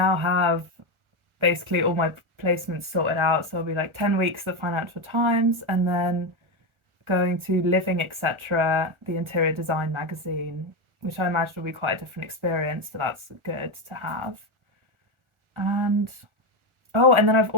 have basically all my placements sorted out. So I'll be like 10 weeks at the Financial Times and then going to Living Etc., the interior design magazine, which I imagine will be quite a different experience. So that's good to have. And oh, and then I've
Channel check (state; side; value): late; left; 1.4 ms